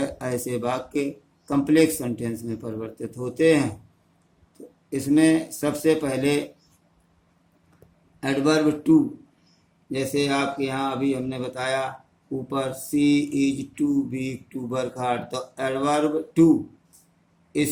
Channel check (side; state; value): both; identical; correlation 1.00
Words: ऐसे वाक्य कम्प्लेक्स सेंटेंस में परिवर्तित होते हैं। तो इसमें सबसे पहले एडवर्ब टू, जैसे आपके यहाँ अभी हमने बताया ऊपर she is too weak to work hard, तो एडवर्ब टू